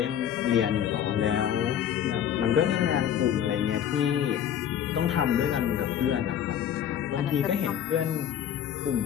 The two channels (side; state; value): right; quieter; 9.7 dB